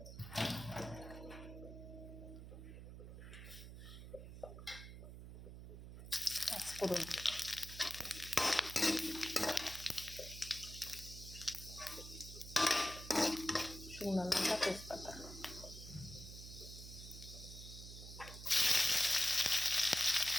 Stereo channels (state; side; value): noise; right; hum, 12 dB below the sound